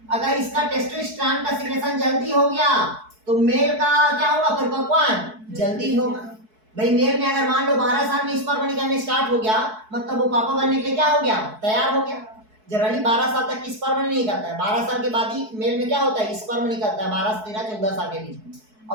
अगर इसका टेस्टोस्टेरोन का सिक्रेशन जल्दी हो गया तो मेल का क्या होगा? परिपक्व जल्दी होगा। भाई मेल में अगर मान लो 12 साल में स्पर्म निकलने स्टार्ट हो गया, मतलब वो पापा बनने के लिए क्या हो गया? तैयार हो गया। जनरली 12 साल तक स्पर्म नहीं निकलता है, 12 साल के बाद ही मेल में क्या होता है? स्पर्म निकलता है, 12 से 13 14 साल के बीच में।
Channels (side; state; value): left; late; 4.6 ms